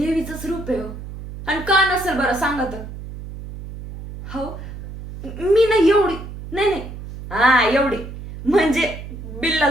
रूप आहे हो. आणि का नसेल बरं सांगा तर. हो मी नाही एवढी नाही नाही हा एवढी म्हणजे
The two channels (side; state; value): right; noise; hum, 11 dB below the sound